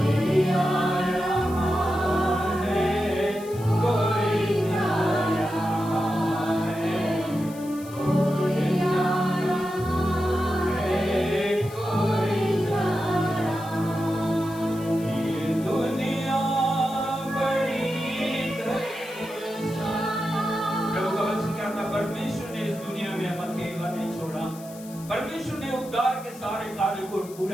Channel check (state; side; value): noise; left; hiss, 19 dB below the sound